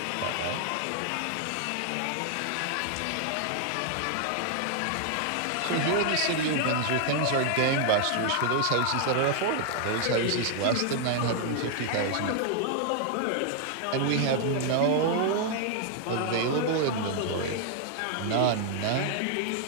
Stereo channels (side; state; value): both; different; correlation 0.00